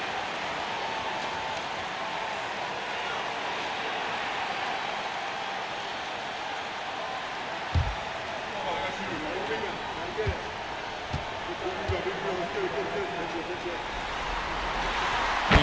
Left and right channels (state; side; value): identical; both; correlation 1.00